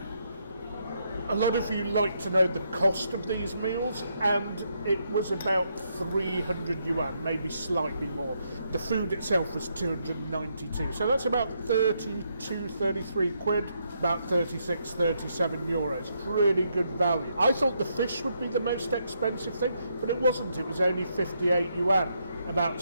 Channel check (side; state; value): both; inverted; correlation -0.77